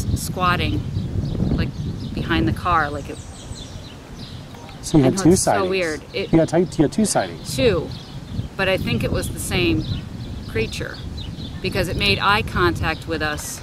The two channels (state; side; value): identical; both; correlation 1.00